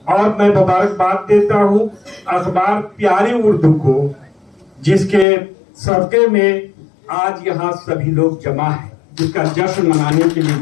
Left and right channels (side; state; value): right; drops out; at 5.2 s